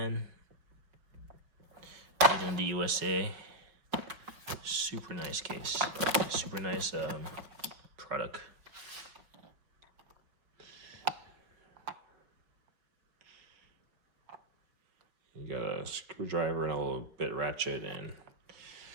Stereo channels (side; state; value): left; late; 5.1 ms